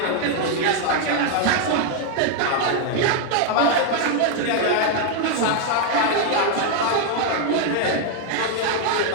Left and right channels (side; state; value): both; different; correlation 0.00